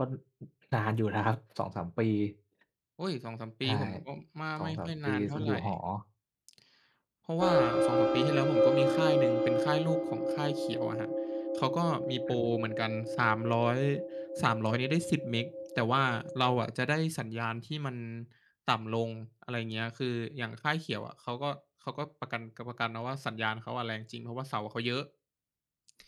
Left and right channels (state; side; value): identical; both; correlation 1.00